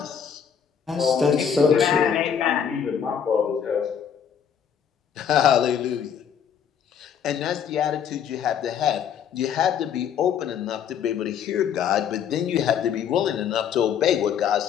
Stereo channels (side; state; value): right; quieter; 8.0 dB